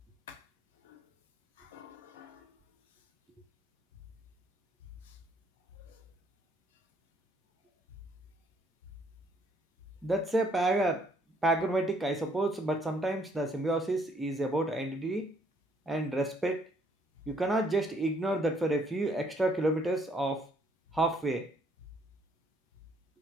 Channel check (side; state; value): both; normal; correlation 0.66